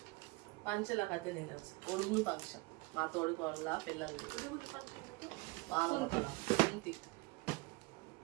పంచల కథ తినచ్చు. ఒడుగురు ఫంక్షన్ మా తోడికోళ్ళ పిల్లలది.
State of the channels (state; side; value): quieter; left; 25.1 dB